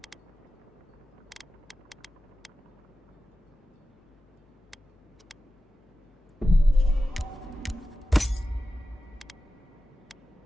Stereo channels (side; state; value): both; normal; correlation 0.94